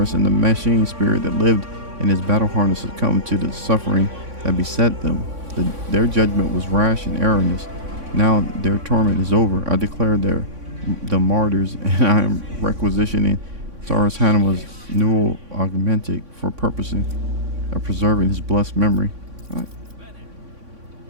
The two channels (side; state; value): left; late; 3.6 ms